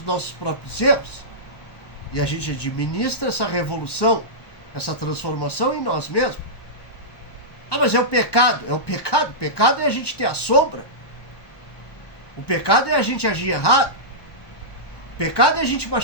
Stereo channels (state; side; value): late; right; 1.1 ms